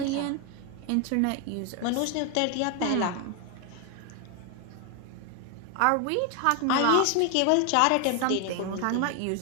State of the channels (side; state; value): both; different; correlation 0.01